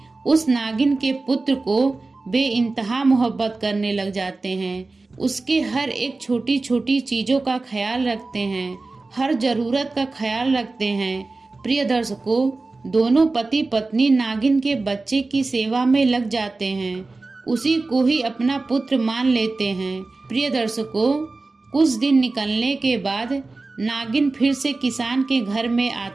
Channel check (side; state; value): left; quieter; 3.5 dB